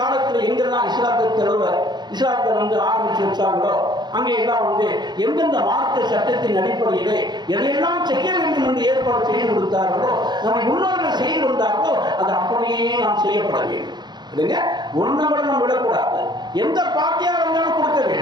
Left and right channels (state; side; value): late; left; 0.21 ms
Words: எங்கெல்லாம் இஸ்லாத்தை ஆரம்பிச்சு வச்சாங்களோ அங்கே எல்லாம் எந்தெந்த மார்க்க சட்டத்தின் அடிப்படையிலே எதையெல்லாம் செய்ய வேண்டும் என்று ஏற்பாடு செய்து கொடுத்தார்களோ, நம்ம முன்னோர்கள் செய்து வந்தார்களோ அது அப்படியே நாம் செய்யப்பட வேண்டும். இல்லைங்க, ஒன்றும் நம்ம விடக்கூடாது. எந்த பாத்தியாக இருந்தாலும் கொடுக்க